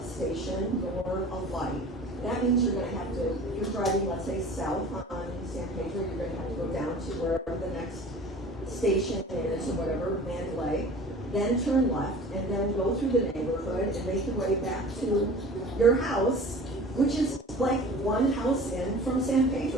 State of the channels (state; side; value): normal; both; correlation 0.43